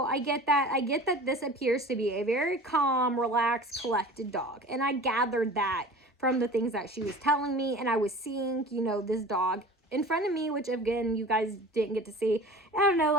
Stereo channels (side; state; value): both; normal; correlation 0.40